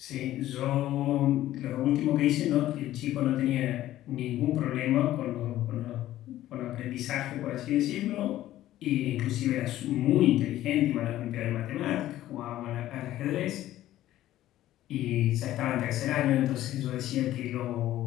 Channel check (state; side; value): quieter; right; 14.0 dB